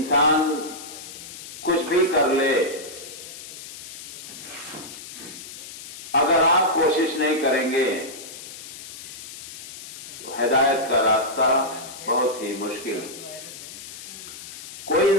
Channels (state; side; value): noise; left; hiss, 12 dB below the sound